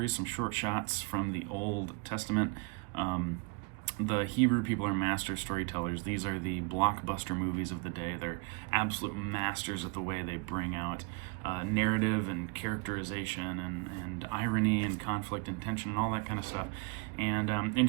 some short shots from the Old Testament. The Hebrew people are master storytellers. These are the blockbuster movies of the day. They're absolute masters at the way they bring out narrative and characterization and irony and conflict and tension and all that kind of stuff. And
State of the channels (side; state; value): left; quieter; 30.7 dB